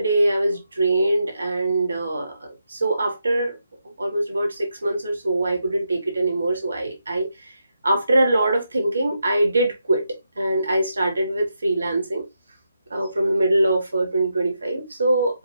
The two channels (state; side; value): inverted; both; correlation -0.84